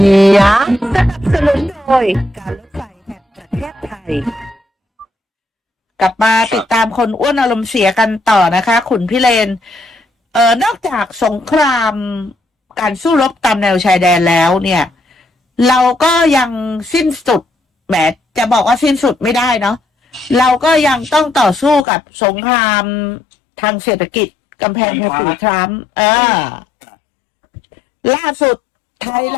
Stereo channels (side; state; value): right; drops out; at 21.9 s